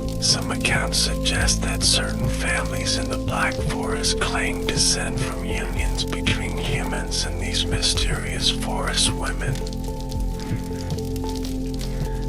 Some accounts suggest that certain families in the Black Forest claim descent from unions between humans and these mysterious forest women.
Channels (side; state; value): both; identical; correlation 1.00